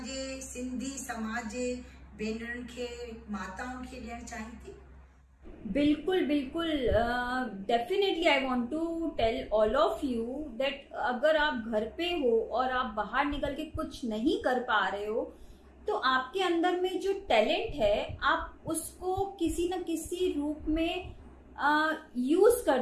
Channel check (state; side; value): identical; both; correlation 1.00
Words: सिंधी समाज जे भेनरुनि खे, माताउनि खे ॾियणु चाहीं थी? बिल्कुल बिल्कुल, definitely I want to tell all of you that अगर आप घर पे हो और आप बाहर निकल के कुछ नहीं कर पा रहे हो, तो आपके अंदर में जो टैलेंट है आप उसको किसी न किसी रूप में यूज